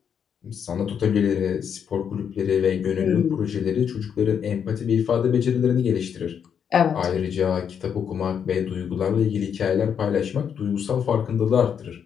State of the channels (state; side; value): quieter; right; 7.8 dB